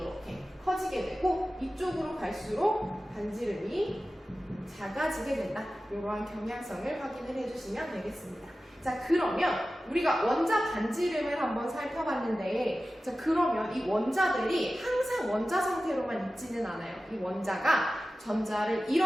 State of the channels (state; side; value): normal; both; correlation 0.95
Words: 커지게 되고, 이쪽으로 갈수록 반지름이 작아지게 된다. 이러한 경향성을 확인을 해주시면 되겠습니다. 자, 그러면 우리가 원자 반지름을 한번 살펴봤는데, 자, 그러면 이 원자들이 항상 원자 상태로만 있지는 않아요. 이 원자가 전자를